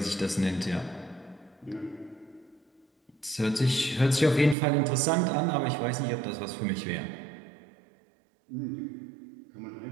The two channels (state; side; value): drops out; left; at 4.5 s